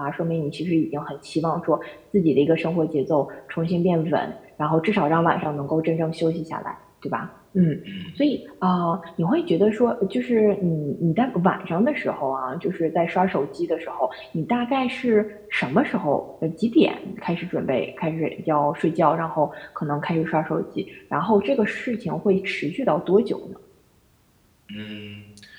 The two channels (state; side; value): identical; both; correlation 1.00